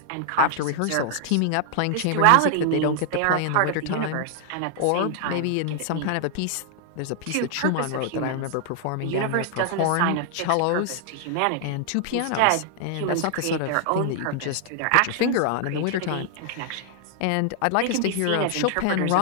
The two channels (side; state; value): both; different; correlation 0.00